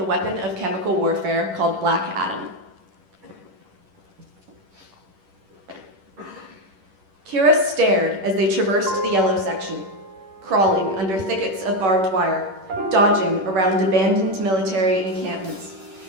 weapon of chemical warfare called Black Adam. Kira stared as they traversed the yellow section, crawling under thickets of barbed wire, dodging around abandoned military encampments,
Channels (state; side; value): late; left; 10 ms